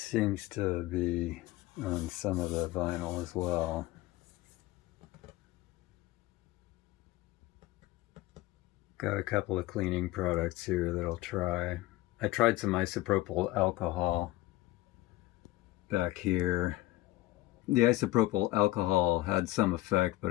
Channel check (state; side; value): quieter; right; 17.6 dB